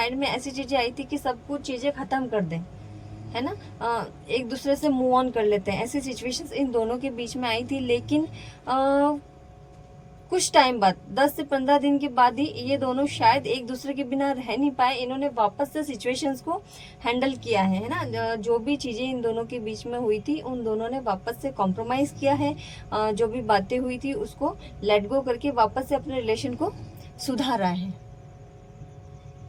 में ऐसी चीजें आई थी कि सब कुछ चीजें खत्म कर दें, है ना। एक दूसरे से मूव ऑन कर लेते हैं। ऐसी सिचुएशंस इन दोनों के बीच में आई थी, लेकिन कुछ टाइम बाद 10 से 15 दिन के बाद ही ये दोनों शायद एक दूसरे के बिना रह नहीं पाए। इन्होंने वापस से सिचुएशंस को हैंडल किया है ना। जो भी चीजें इन दोनों के बीच में हुई थी, उन दोनों ने वापस से कॉम्प्रोमाइज किया है। जो भी बातें हुई थी उसको लेट गो करके वापस से अपने रिलेशन को सुधारा है।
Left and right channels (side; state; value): both; identical; correlation 1.00